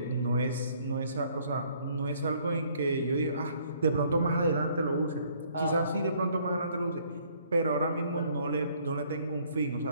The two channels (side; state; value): both; inverted; correlation -0.63